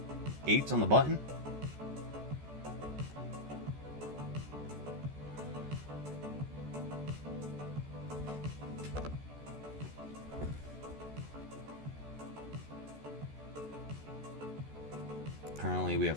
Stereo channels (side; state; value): left; late; 14 ms